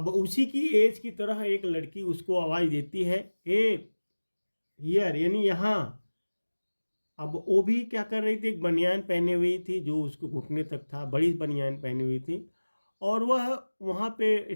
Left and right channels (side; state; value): both; inverted; correlation -1.00